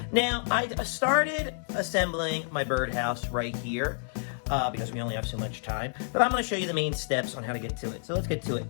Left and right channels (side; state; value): right; silent; 58 dB below the other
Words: Now, I started assembling my birdhouse right here because we only have so much time, but I'm going to show you the main steps on how to get to it. So let's get to it.